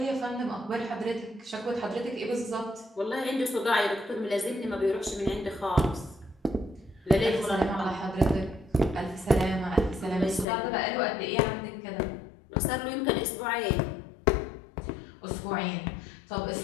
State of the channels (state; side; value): drops out; right; at 10.5 s